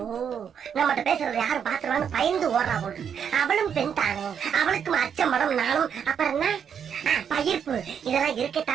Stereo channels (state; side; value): quieter; left; 7.8 dB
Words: நம்மகிட்ட பேசுறது யாரும் பாத்துருவாங்க பயந்து ஓடுறா போட்டு. அவளும் பெண் தானே, அவளுக்கும் அச்சம் படம் நானும். அப்புறம் என்ன பயிர்ப்பு, இதெல்லாம்